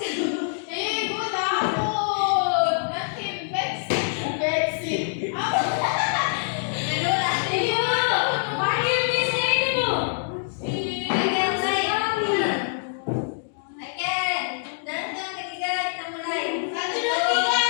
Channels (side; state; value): right; silent; digital silence